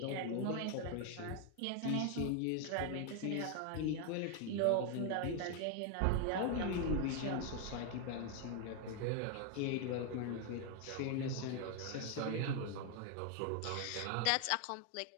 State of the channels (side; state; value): both; different; correlation 0.01